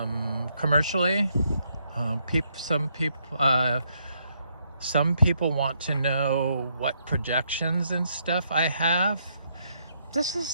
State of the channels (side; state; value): both; inverted; correlation -0.74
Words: commercially. Some people want to know what projections and stuff I have. This